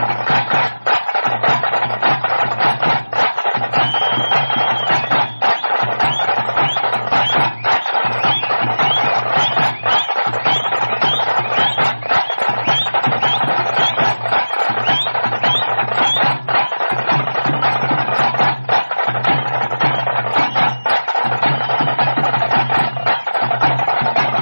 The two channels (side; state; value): both; inverted; correlation -1.00